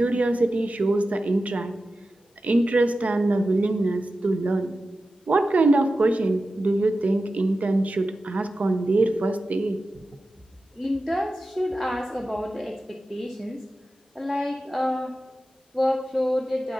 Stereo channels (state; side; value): normal; both; correlation 0.93